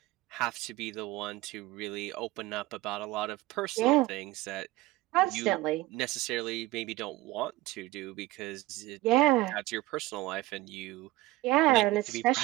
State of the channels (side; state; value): left; quieter; 19.1 dB